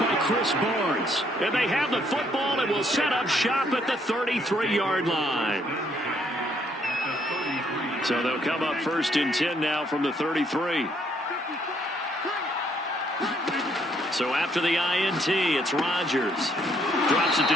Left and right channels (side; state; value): both; normal; correlation 0.69